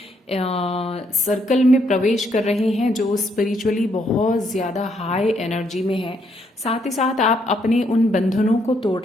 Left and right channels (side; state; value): both; normal; correlation 0.73